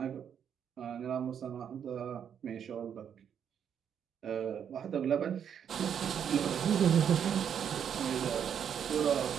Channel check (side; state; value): left; quieter; 8.3 dB